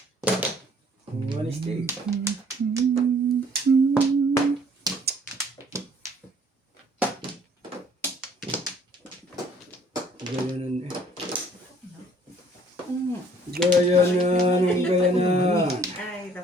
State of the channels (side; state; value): both; normal; correlation 0.59